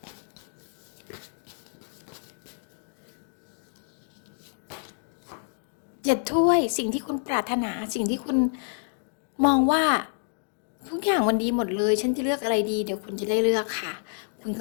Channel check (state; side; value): silent; right; digital silence